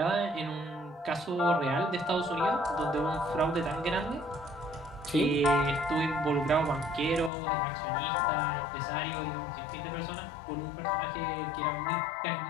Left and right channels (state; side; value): drops out; right; at 7.3 s